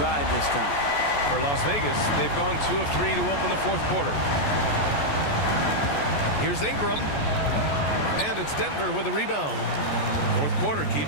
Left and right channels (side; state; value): right; late; 14 ms